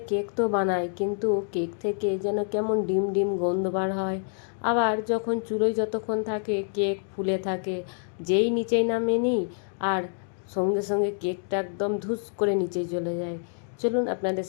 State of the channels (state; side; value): silent; right; 57 dB below the other